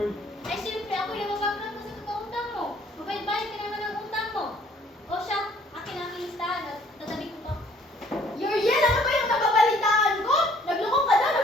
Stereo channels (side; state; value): both; normal; correlation 0.59